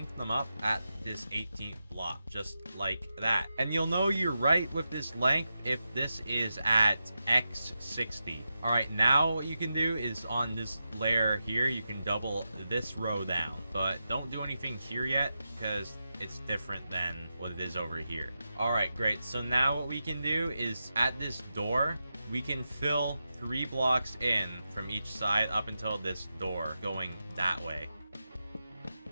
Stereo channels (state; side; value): inverted; both; correlation -0.89